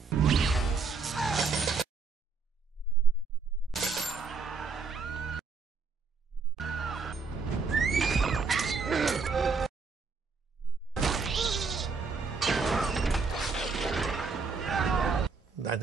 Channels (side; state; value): left; quieter; 4.7 dB